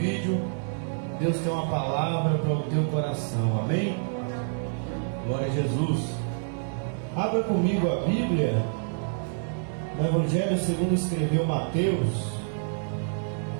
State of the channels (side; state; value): left; silent; digital silence